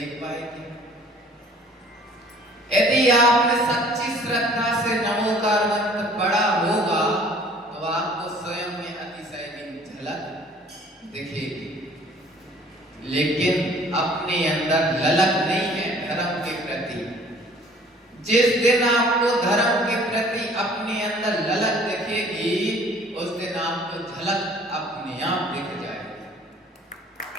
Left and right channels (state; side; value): normal; both; correlation 0.53